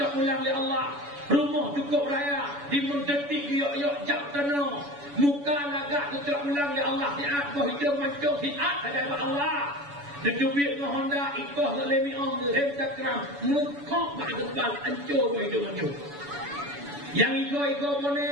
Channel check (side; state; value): left; late; 7.0 ms